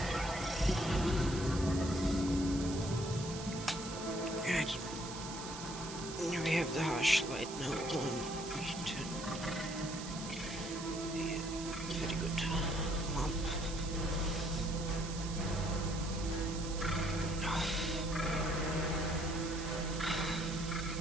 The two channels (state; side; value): noise; right; hiss, 10 dB below the sound